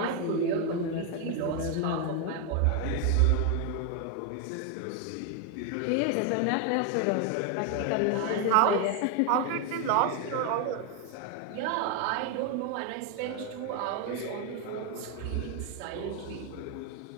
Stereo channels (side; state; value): both; different; correlation 0.01